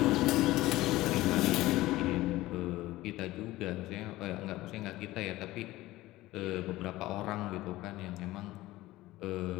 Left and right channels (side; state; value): right; quieter; 17.4 dB